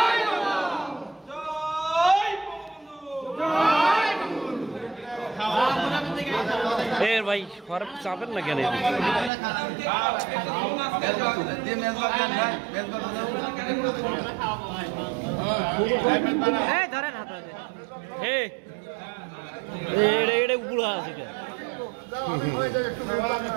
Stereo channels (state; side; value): drops out; left; at 9.3 s